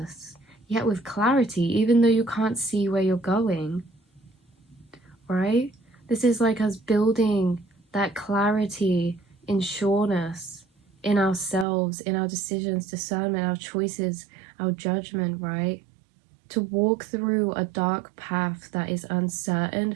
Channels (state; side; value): drops out; left; at 11.7 s